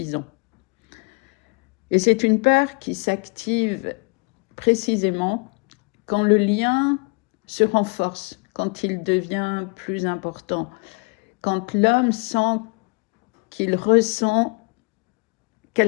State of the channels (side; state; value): right; quieter; 31.6 dB